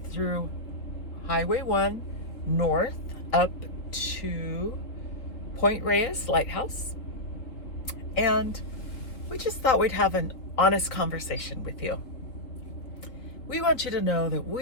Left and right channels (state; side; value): late; right; 3.7 ms